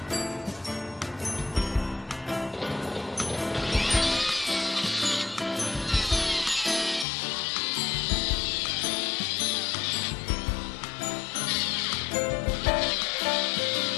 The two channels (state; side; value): drops out; right; at 7.1 s